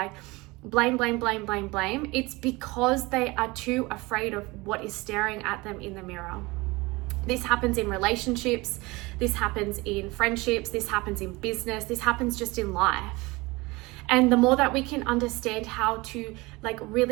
blame, it's because they are too afraid of what is staring at them in the mirror. This happens in relationships, this happens in friendships, this happens in business, this happens just in life. And the more that we can understand how to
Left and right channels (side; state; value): left; quieter; 23.0 dB